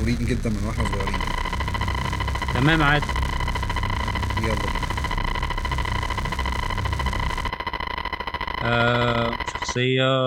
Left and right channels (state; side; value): identical; both; correlation 1.00